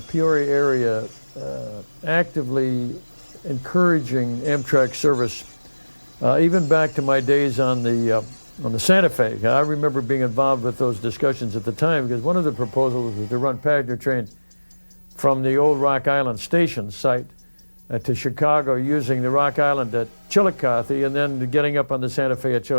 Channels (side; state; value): both; inverted; correlation -1.00